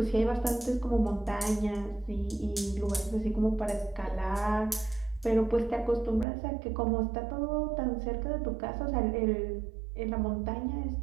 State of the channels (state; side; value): drops out; left; at 6.2 s